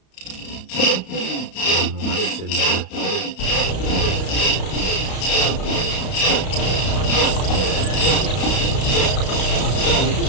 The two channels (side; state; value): right; late; 32 ms